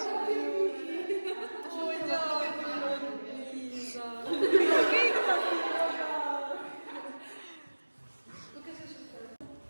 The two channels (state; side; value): inverted; both; correlation -1.00